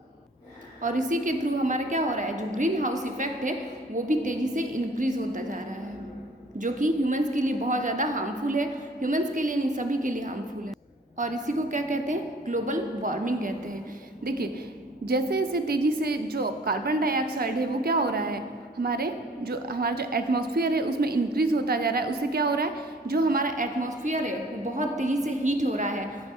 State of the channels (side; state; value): both; normal; correlation 0.54